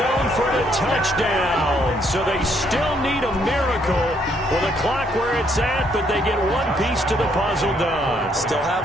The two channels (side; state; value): both; normal; correlation 0.70